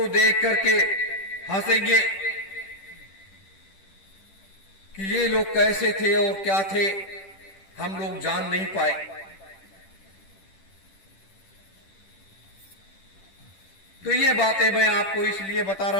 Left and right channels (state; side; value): late; right; 10 ms